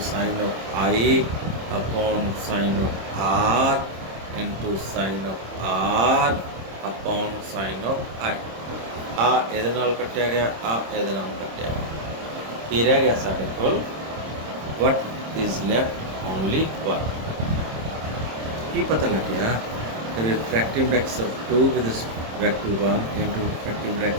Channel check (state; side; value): late; left; 26 ms